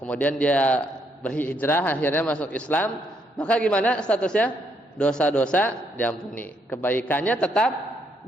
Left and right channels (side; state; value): both; normal; correlation 0.74